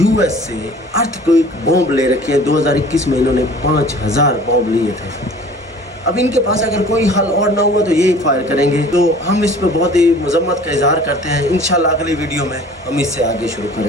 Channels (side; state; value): both; normal; correlation 0.47